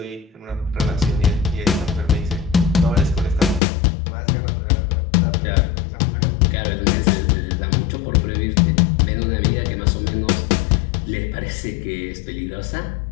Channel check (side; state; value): right; drops out; at 3.6 s